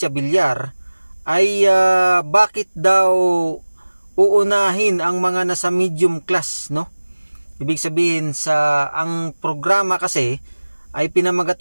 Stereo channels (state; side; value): inverted; both; correlation -1.00